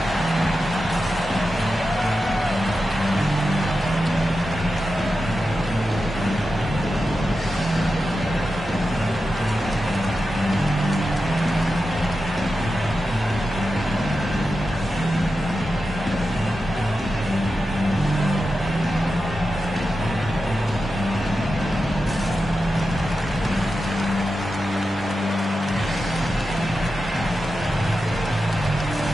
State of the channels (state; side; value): normal; both; correlation 0.91